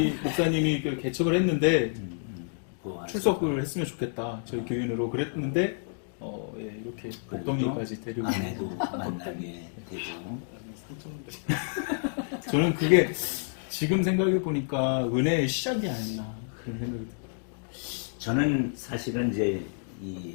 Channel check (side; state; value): right; silent; digital silence